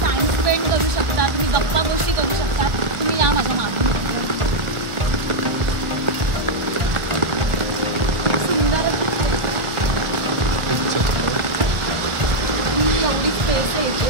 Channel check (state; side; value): late; left; 1.4 ms